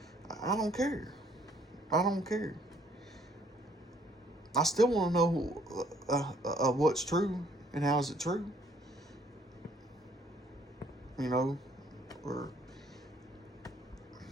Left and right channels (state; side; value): normal; both; correlation 0.63